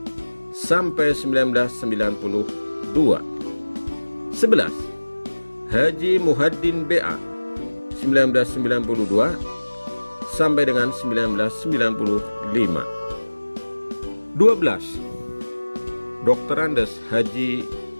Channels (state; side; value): inverted; both; correlation -1.00